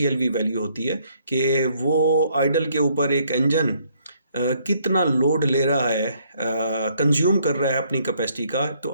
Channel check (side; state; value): both; inverted; correlation -0.67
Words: वैल्यू होती है कि वो आइडल के ऊपर एक इंजन कितना लोड ले रहा है, कंज्यूम कर रहा है अपनी कैपेसिटी का। तो